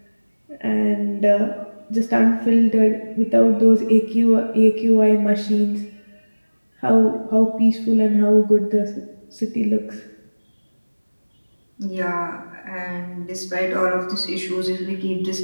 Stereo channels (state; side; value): inverted; both; correlation -1.00